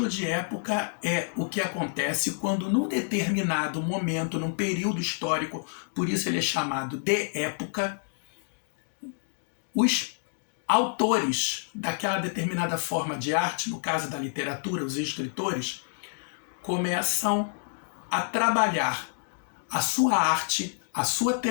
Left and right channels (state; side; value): silent; right; digital silence